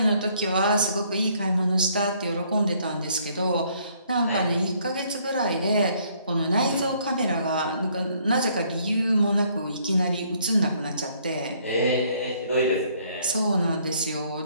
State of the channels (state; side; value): inverted; both; correlation -0.65